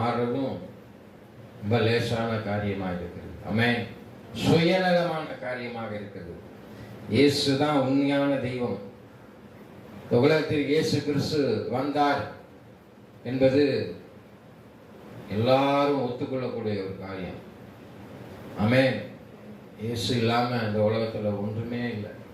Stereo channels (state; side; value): identical; both; correlation 1.00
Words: ரொம்ப லேசான காரியமாக இருக்கிறது. ஆமென். சுயநலமான காரியமாக இருக்கிறது. இயேசு தான் உண்மையான தெய்வம். உலகத்தில் இயேசு கிறிஸ்து வந்தார் என்பது எல்லாரும் ஒத்துக்கொள்ளக்கூடிய ஒரு காரியம். ஆமென். இயேசு இல்லாம இந்த உலகத்துல ஒன்றுமே இல்லை.